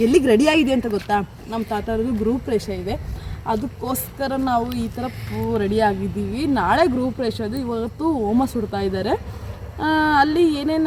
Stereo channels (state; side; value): identical; both; correlation 1.00